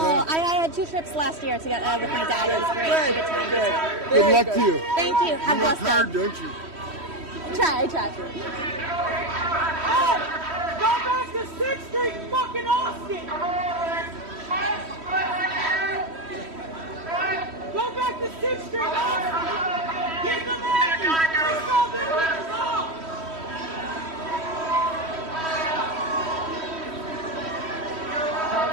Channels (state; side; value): late; left; 3.1 ms